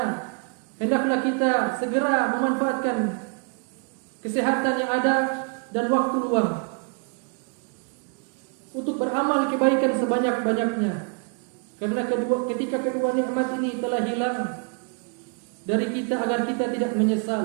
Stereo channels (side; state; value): left; quieter; 36.9 dB